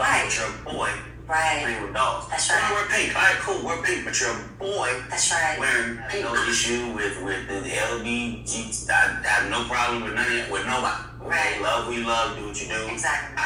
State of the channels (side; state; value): both; identical; correlation 1.00